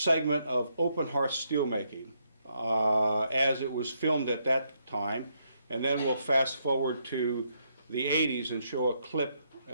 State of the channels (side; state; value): both; inverted; correlation -0.76